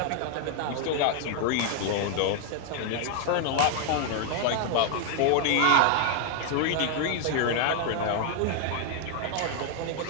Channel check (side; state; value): both; different; correlation 0.00